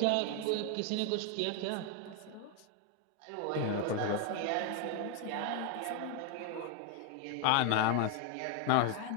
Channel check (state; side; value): different; both; correlation 0.01